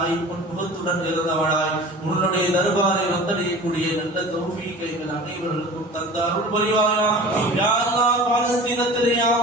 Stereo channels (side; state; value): both; normal; correlation 0.39